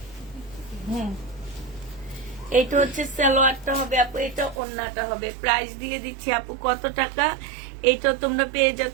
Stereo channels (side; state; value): left; drops out; at 4.6 s